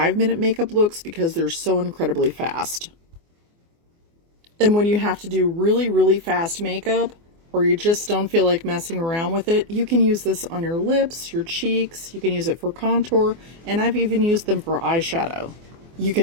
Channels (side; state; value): left; late; 24 ms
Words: makeup looks because they're so incredibly fast. And when you have to do really, really fast makeup, or you just don't feel like messing around with it, you can use this on your lips, your cheeks, you can use it for contour, and I've even used them for eyeshadow. You